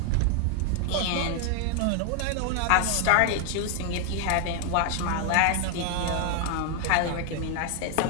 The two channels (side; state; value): both; different; correlation 0.00